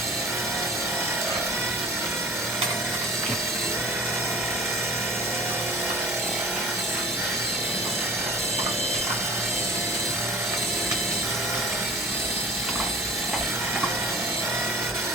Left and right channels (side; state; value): both; normal; correlation 0.44